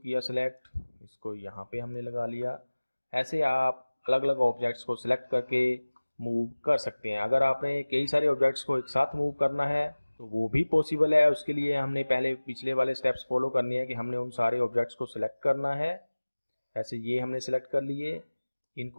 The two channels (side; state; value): both; inverted; correlation -1.00